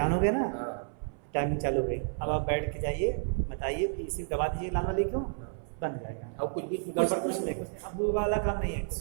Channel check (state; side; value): silent; left; 57 dB below the other